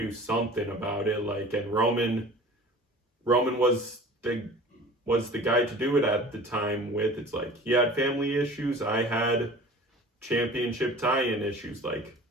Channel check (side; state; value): both; normal; correlation 0.43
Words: something about it. Like, and Roman was the guy to do it at the time with. It's like, he had family issues. I had championship tie-in issues. Like,